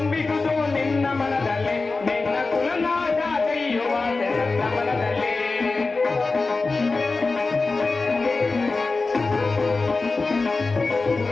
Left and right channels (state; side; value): quieter; right; 3.8 dB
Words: ನಿನ್ನ ಮನದಲ್ಲಿ, ನಿನ್ನ ಕುಲನಾಗ ಕೈಯುವ ನನ್ನ ಮನದಲ್ಲಿ.